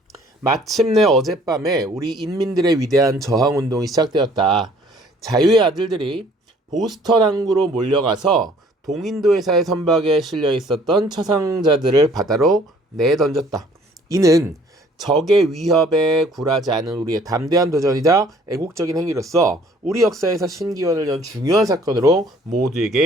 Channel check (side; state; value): both; normal; correlation 0.57